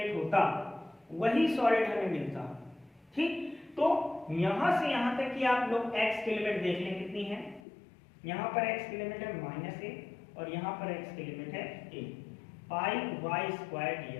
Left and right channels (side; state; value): right; drops out; at 7.6 s